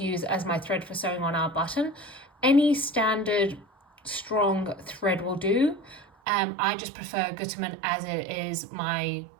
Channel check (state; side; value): drops out; left; at 6.1 s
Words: use as my thread for sewing on our button. Any standard strong thread will do. I just prefer Gütermann as it is my